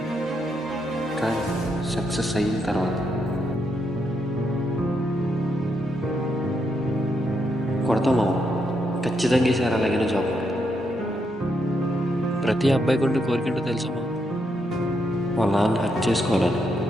కానీ సక్సెస్ అయిన తర్వాత. కొడతామా? ఖచ్చితంగా ఈసారి అలాగైనా జాబ్. ప్రతి అబ్బాయి గుండె కోరికంటూ తెలుసమ్మా, వాళ్ళ నాన్న హక్ చేసుకోవాలని.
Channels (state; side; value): normal; both; correlation 0.79